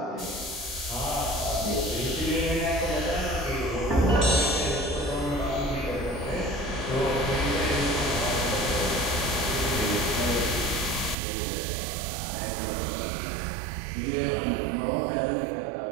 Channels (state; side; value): drops out; left; at 11.2 s